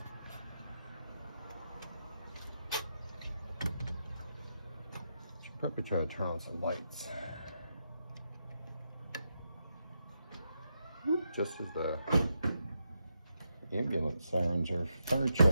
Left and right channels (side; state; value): both; inverted; correlation -0.84